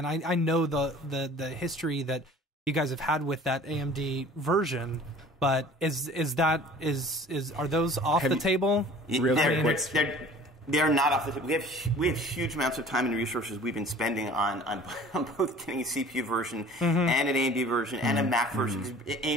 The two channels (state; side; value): normal; both; correlation 0.47